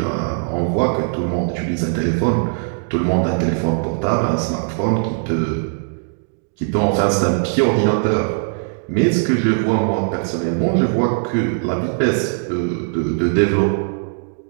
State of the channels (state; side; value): silent; left; 66 dB below the other